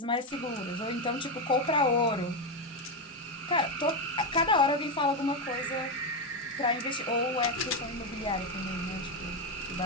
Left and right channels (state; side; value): normal; both; correlation 0.09